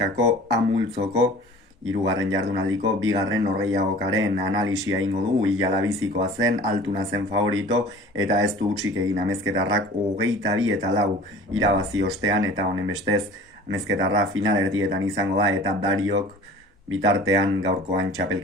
amultzoko hirugarren jardunaldiko bigarren norgehiagokaren analisia egingo dugu. Ilalabizikoa zen, Altuna zen favorito eta ez du hutsik egin amezketarrak 22-4 irabazi ostean, eta honen bestez amezketarra final erdietan izango da eta Dariok bitartean gaurkoan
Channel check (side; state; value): both; normal; correlation 0.44